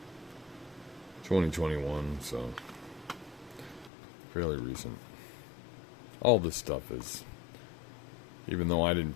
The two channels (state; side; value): drops out; right; at 3.9 s